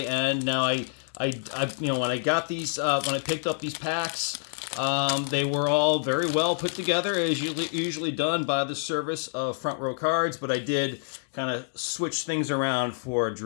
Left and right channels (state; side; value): silent; right; digital silence